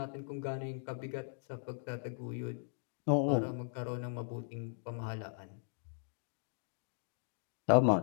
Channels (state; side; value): silent; right; digital silence